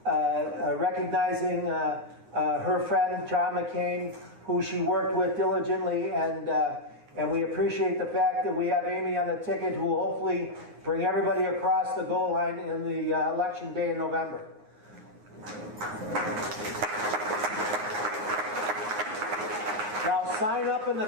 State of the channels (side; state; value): left; late; 9.7 ms